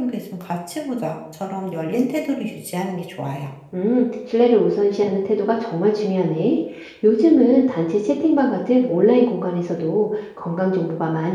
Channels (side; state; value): both; identical; correlation 1.00